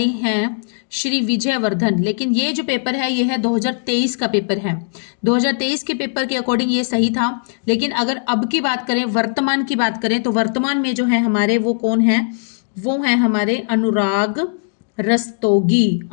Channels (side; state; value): right; silent; digital silence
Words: हैं श्री विजय वर्धन। लेकिन ये जो पेपर है ये है 2023 का पेपर है। 2023 के पेपर के अकॉर्डिंग ये सही था, लेकिन अगर अब की बात करें, वर्तमान की बात करें, तो वर्तमान में जो है हमारे वो कौन है? वो है हमारे अनुराग रस्तोगी।